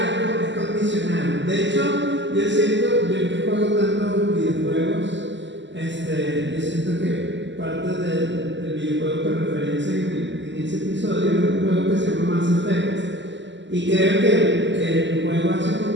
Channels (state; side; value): late; left; 0.53 ms